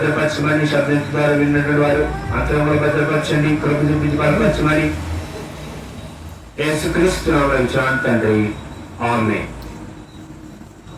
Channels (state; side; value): identical; both; correlation 1.00